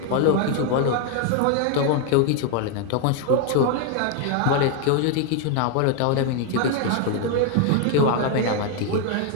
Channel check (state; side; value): different; both; correlation 0.01